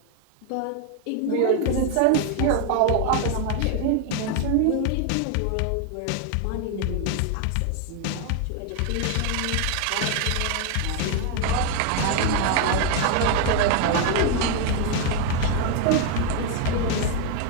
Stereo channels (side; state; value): both; different; correlation 0.01